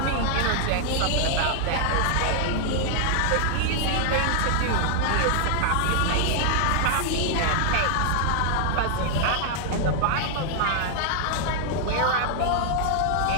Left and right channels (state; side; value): different; both; correlation 0.00